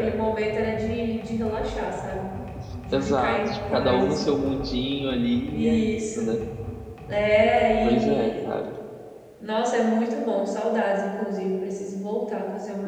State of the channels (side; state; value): both; identical; correlation 1.00